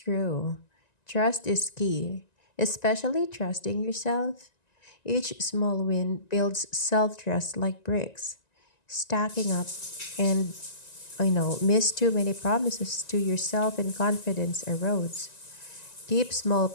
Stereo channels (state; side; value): late; right; 1.9 ms